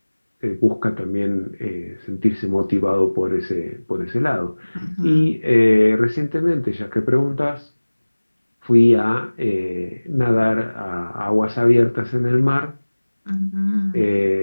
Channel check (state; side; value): inverted; both; correlation -1.00